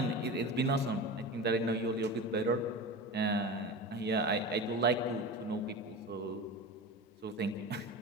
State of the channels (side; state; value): both; normal; correlation 0.29